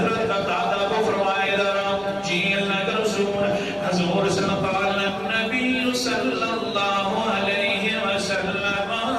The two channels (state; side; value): noise; left; rumble, 29 dB below the sound